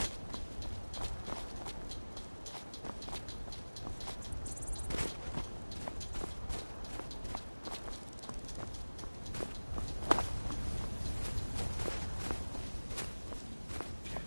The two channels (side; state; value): both; inverted; correlation -1.00